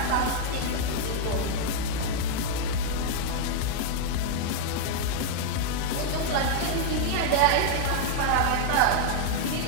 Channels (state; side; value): different; both; correlation 0.00